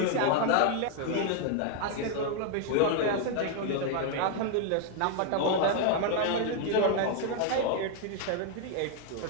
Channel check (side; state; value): both; different; correlation 0.00